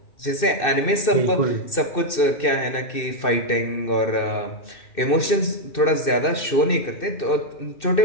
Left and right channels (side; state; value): right; late; 2.6 ms